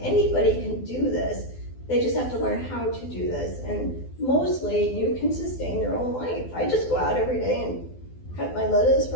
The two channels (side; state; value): right; late; 12 ms